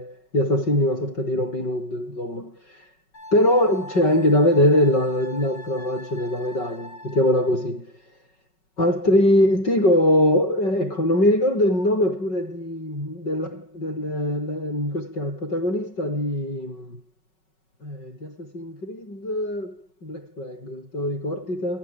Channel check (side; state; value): right; late; 5.4 ms